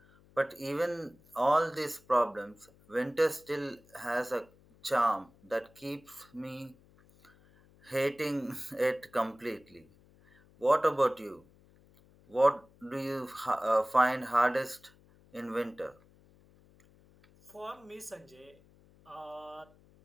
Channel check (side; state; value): left; noise; hum, 28 dB below the sound